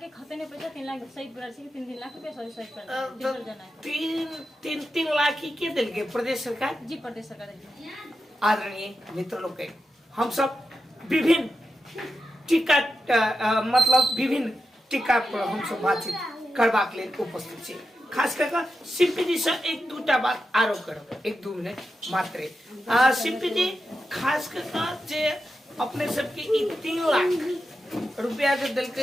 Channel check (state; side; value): normal; both; correlation 0.89